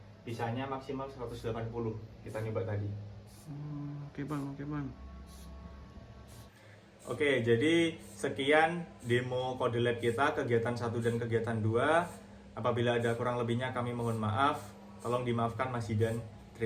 Bisanya maksimal 180. Kita nyoba tadi. Oke bang. Oke, jadi sekian demo Kode Lab kita, kegiatan 1 dan kegiatan 2. Apabila ada kurang lebihnya kami mohon maaf. Tolong dimaafkan Mas Zidan.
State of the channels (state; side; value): identical; both; correlation 1.00